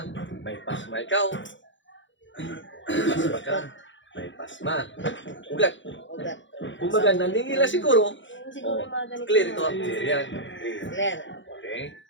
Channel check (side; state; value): right; late; 0.55 ms